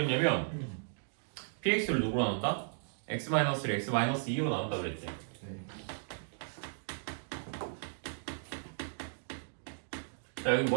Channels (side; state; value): left; silent; digital silence